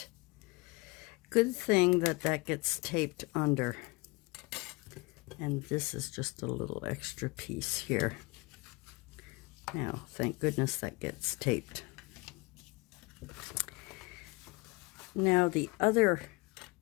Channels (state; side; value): quieter; right; 25.5 dB